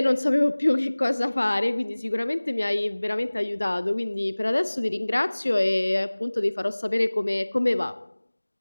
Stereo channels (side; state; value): both; inverted; correlation -1.00